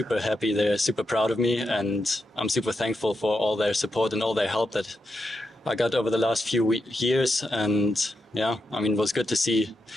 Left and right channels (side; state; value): both; normal; correlation 0.86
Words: happy. They're super proud of me, and I'm super thankful for all their support and all their help that I got over the last few years. And yeah, I mean, it was good to see